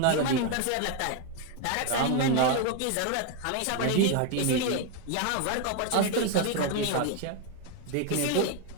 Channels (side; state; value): both; different; correlation 0.01